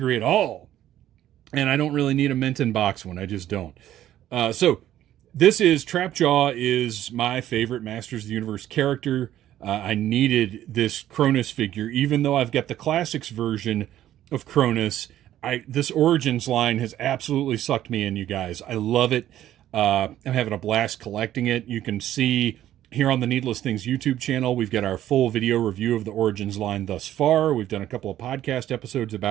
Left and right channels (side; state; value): left; quieter; 12.5 dB